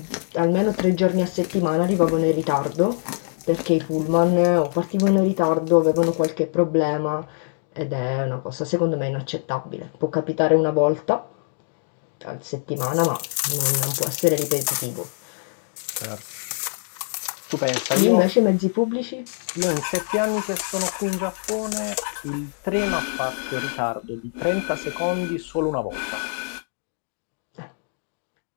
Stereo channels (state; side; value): silent; right; digital silence